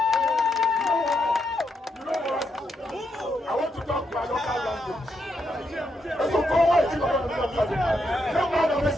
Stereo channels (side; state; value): both; normal; correlation 0.81